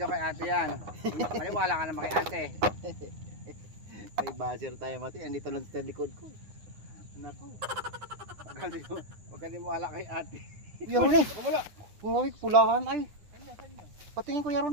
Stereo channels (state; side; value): late; left; 9.6 ms